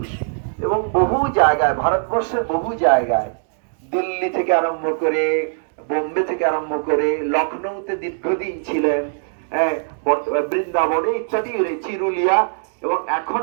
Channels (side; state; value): left; silent; digital silence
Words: এবং বহু জায়গায়, ভারতবর্ষের বহু জায়গায়, দিল্লি থেকে আরম্ভ করে, বোম্বে থেকে আরম্ভ করে, লখনৌতে দীর্ঘদিন ছিলেন, বৃন্দাবনে ইত্যাদি, চিরুলিয়া, এবং এখন